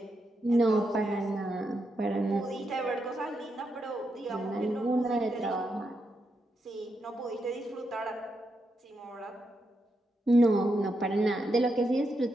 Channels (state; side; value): normal; both; correlation 0.83